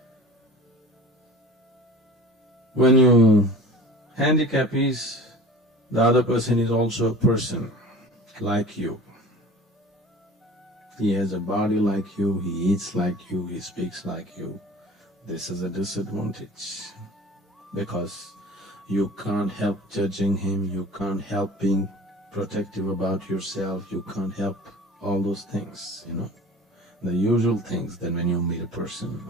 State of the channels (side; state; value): both; normal; correlation 0.42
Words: When you handicap is, the other person is also a person like you. He has a body like you, he eats like you, he speaks like you. this is a disadvantage, because you can't help judging him, you can't help being protective about yourself, you can't help all those things, the usual things that when you meet a person